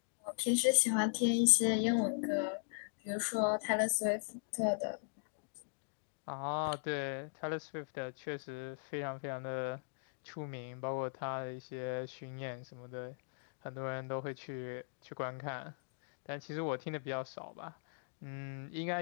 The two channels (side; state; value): right; silent; digital silence